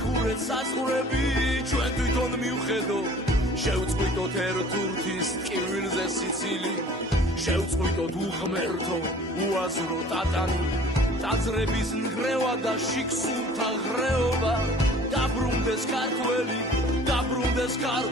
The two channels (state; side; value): normal; both; correlation 0.49